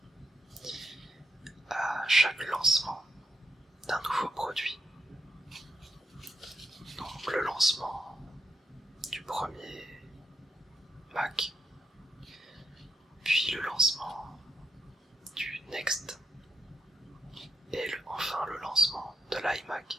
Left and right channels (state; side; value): normal; both; correlation 0.81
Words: à chaque lancement d'un nouveau produit. Donc le lancement du premier Mac, puis le lancement du Next, et enfin le lancement de